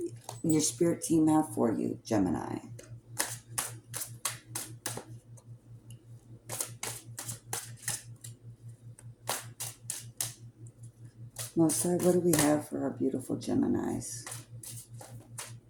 Your spirit team have for you, Gemini. Most High, what do we have for our beautiful Geminis?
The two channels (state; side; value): identical; both; correlation 1.00